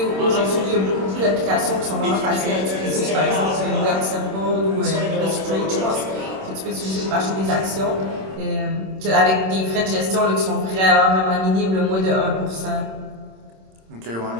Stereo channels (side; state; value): left; late; 26 ms